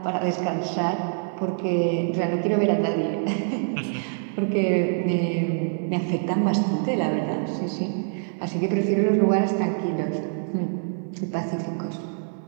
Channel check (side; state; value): left; silent; 62 dB below the other